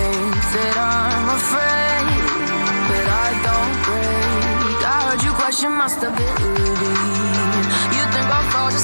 that I'm afraid, but I don't break. I heard you question my stability. You think I'll fall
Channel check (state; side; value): inverted; both; correlation -1.00